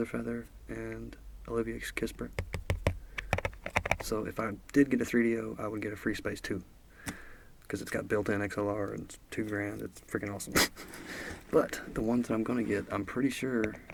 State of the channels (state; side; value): identical; both; correlation 1.00